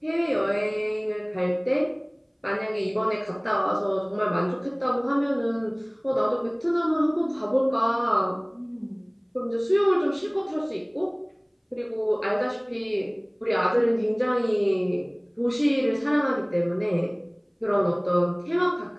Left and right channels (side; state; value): both; identical; correlation 1.00